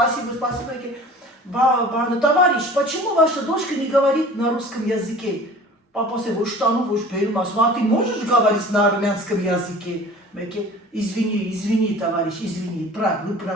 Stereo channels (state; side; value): normal; both; correlation 0.44